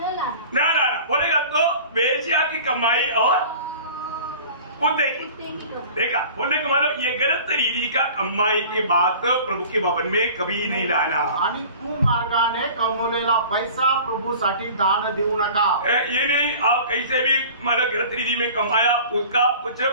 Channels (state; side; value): inverted; both; correlation -0.43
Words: लाना. ना बोलेगा तो वेश्या की कमाई और कुत्ते की. देखा, बोलने का मतलब ये गलत तरीके का कमाई की बात प्रभु के भवन में कभी नहीं लाना. आणि कुमार्गाने कमवलेला पैसा प्रभूसाठी दान देऊ नका. ये नहीं आप कैसे भी मतलब गलत रीति में कमाया उसका कुछ